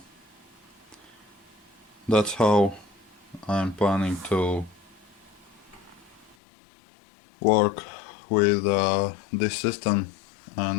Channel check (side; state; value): right; drops out; at 6.4 s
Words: that's how I'm planning to work with this system